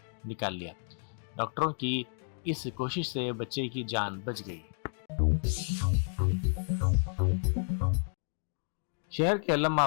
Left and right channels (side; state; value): right; silent; digital silence